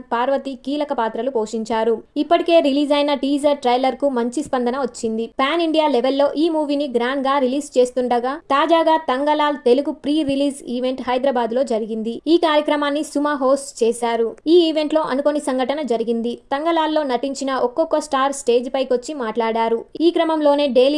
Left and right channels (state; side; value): identical; both; correlation 1.00